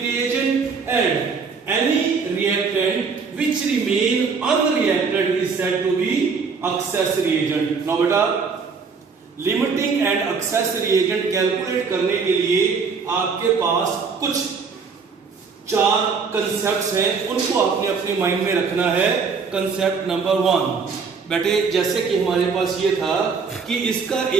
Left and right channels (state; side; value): quieter; left; 5.2 dB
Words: and any reactant which remain unreacted is said to be excess reagent. Now beta limiting and excess reagent calculate करने के लिए आपके पास कुछ 4 concepts हैं, उनको आपने अपने mind में रखना है। कंसेप्ट नंबर 1 बेटे, जैसे कि हमारे पास ये था कि इसका